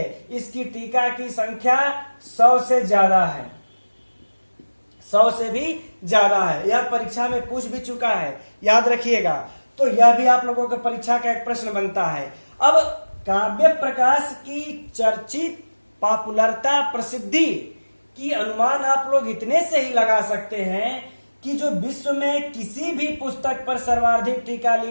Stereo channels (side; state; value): both; inverted; correlation -1.00